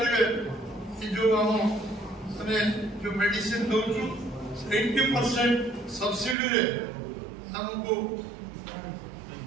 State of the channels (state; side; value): drops out; left; at 6.4 s